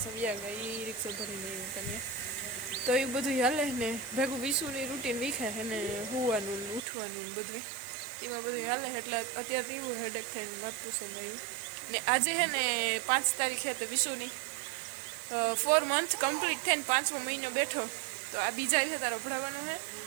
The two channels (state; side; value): drops out; left; at 6.8 s